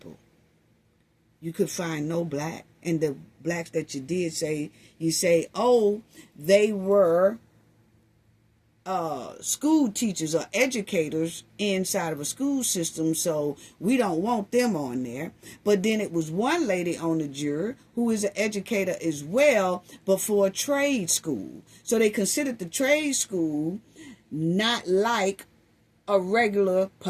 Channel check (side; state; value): both; identical; correlation 1.00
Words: you could find no black. And the blacks that you did say, you say, oh, they were school teachers or educators inside of a school system, so we don't want them on there. But then it was one lady on the jury who is an educator as well, but for a trade school. So they considered the trade school not like a regular